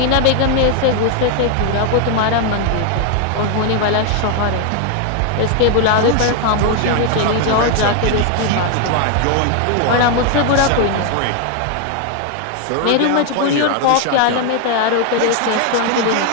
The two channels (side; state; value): both; different; correlation 0.01